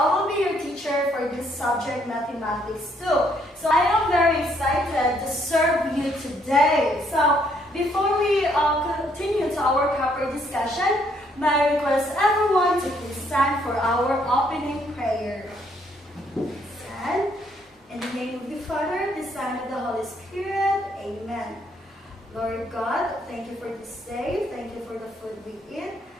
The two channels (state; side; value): normal; both; correlation 0.69